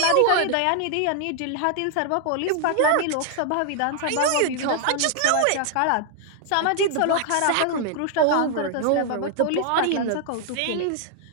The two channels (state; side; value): different; both; correlation 0.00